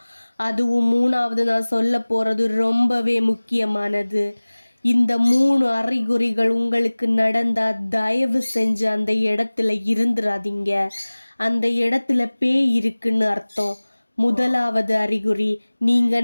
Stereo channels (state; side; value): inverted; both; correlation -1.00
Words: அதுவும் 3வது நான் சொல்ல போறது ரொம்பவே முக்கியமானது. இந்த 3 அறிகுறிகள் உங்களுக்கு நடந்தா தயவு செஞ்சு அந்த இடத்துல இருந்துராதீங்க. அந்த இடத்துல பேய் இருக்குன்னு அர்த்தம். முதலாவது அறிகுறி, நீங்க